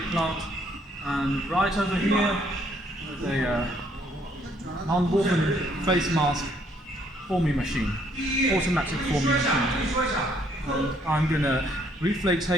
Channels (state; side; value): normal; both; correlation 0.67